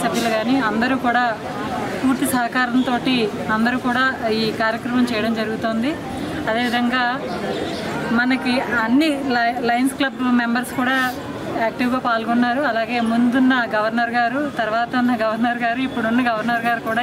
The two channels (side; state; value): both; identical; correlation 1.00